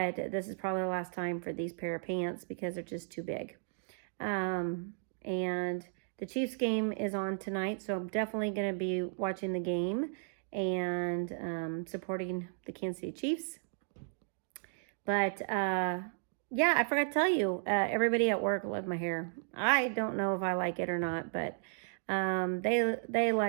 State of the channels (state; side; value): silent; left; digital silence